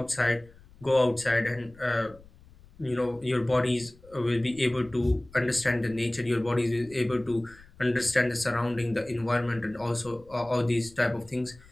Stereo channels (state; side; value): noise; left; rumble, 24 dB below the sound